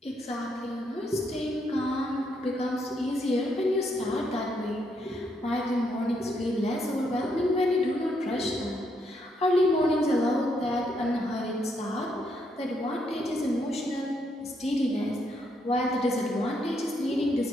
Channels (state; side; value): normal; both; correlation 0.76